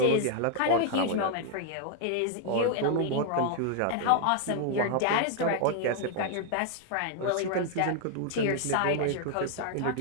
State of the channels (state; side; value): different; both; correlation 0.00